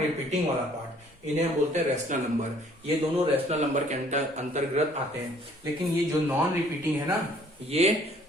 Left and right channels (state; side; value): normal; both; correlation 0.58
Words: वाला पार्ट, इन्हें हम बोलते हैं रैशनल नंबर। ये दोनों रैशनल नंबर के अंतर्गत आते हैं, लेकिन ये जो नॉन रिपीटिंग है ना, ये